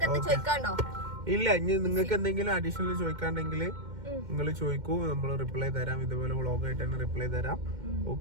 എന്ത് ചോദിക്കാണ്ടോ? ഇല്ല, ഇനി നിങ്ങൾക്ക് എന്തെങ്കിലും അഡീഷണൽ ചോദിക്കാണ്ടെങ്കിൽ നിങ്ങൾ ചോദിക്കൂ, നമ്മൾ റിപ്ലൈ തരാം. ഇതുപോലെ വ്ളോഗായിട്ട് തന്നെ റിപ്ലൈ തരാം.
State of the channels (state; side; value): late; left; 2.1 ms